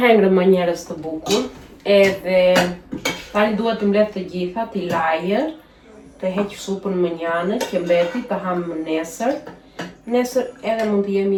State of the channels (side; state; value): both; identical; correlation 1.00